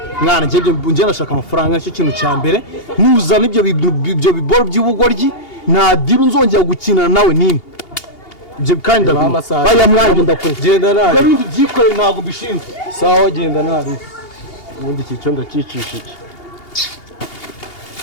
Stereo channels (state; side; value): late; right; 2.8 ms